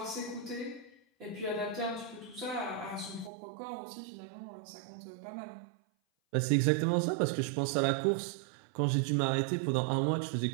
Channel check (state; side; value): drops out; left; at 3.3 s